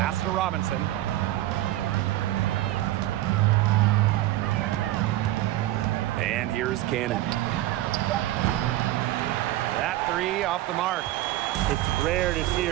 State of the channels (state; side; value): quieter; left; 15.2 dB